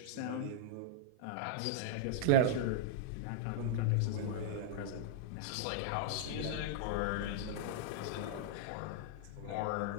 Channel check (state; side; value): different; both; correlation -0.02